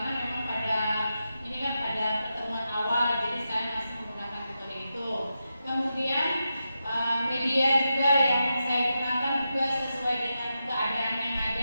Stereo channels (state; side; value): inverted; both; correlation -0.88